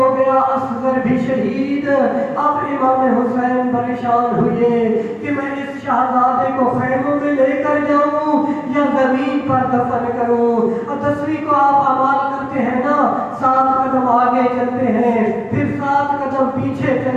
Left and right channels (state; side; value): identical; both; correlation 1.00